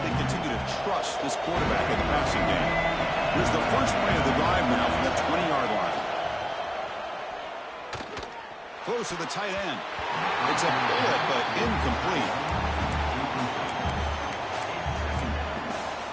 they continue to trust this quarterback in the passing game. Here's the first play of the drive now from the 20-yard line. Close to the tight end. It's a bullet, but incomplete.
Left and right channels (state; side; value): identical; both; correlation 1.00